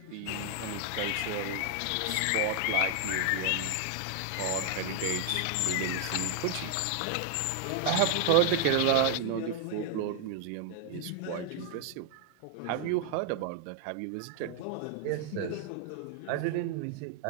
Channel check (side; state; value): both; different; correlation 0.00